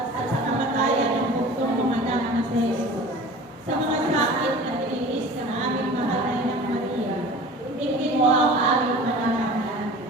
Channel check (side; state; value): both; normal; correlation 0.40